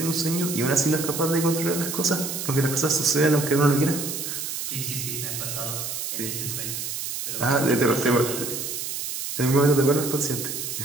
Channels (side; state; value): right; noise; hiss, 5 dB below the sound